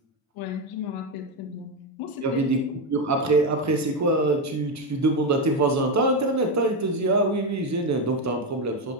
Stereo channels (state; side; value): normal; both; correlation 0.09